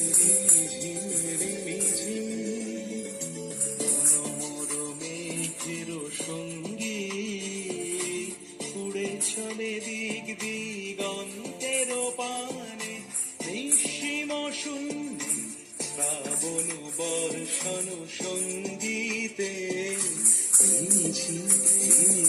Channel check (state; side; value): identical; both; correlation 1.00